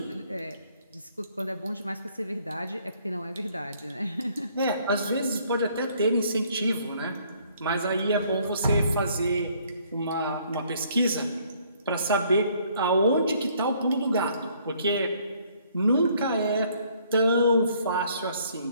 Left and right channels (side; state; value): both; inverted; correlation -0.63